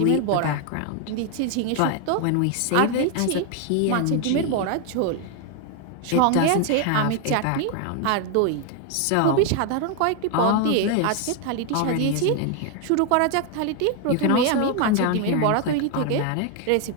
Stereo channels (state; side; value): different; both; correlation 0.01